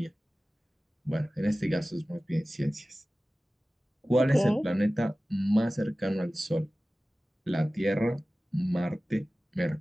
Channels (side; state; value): both; normal; correlation 0.97